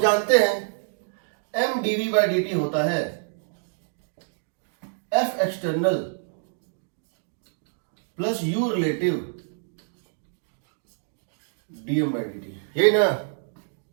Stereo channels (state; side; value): silent; left; digital silence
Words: जानते हैं m dv by dt होता है f external plus u relative dm by dt, यही ना।